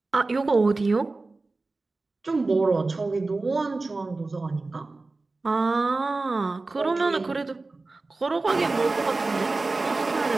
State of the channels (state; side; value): quieter; left; 3.5 dB